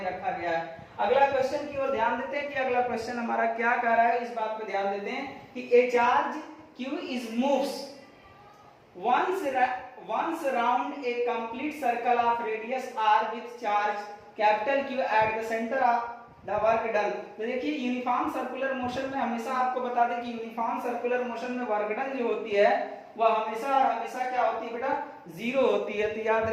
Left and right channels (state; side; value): identical; both; correlation 1.00